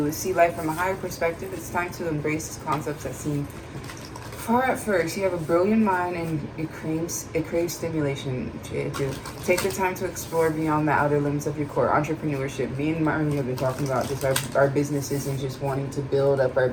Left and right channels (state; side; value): identical; both; correlation 1.00